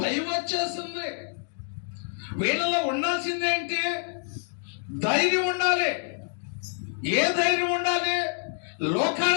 భయం వచ్చేసింది. వీళ్ళలో ఉండాల్సింది ఏంటి? ధైర్యం ఉండాలి. ఏ ధైర్యం ఉండాలి?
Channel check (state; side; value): silent; right; 60 dB below the other